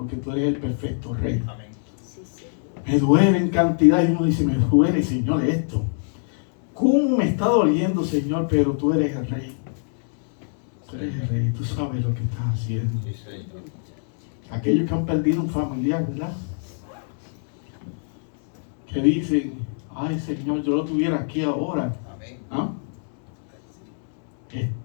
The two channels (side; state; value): right; silent; digital silence